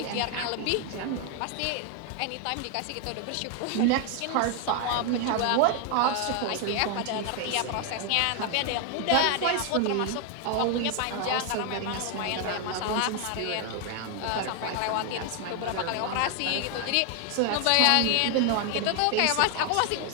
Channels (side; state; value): both; different; correlation 0.00